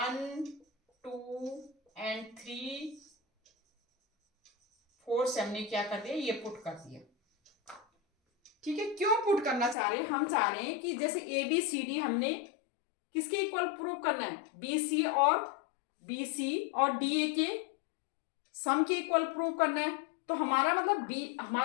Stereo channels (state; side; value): drops out; right; at 9.8 s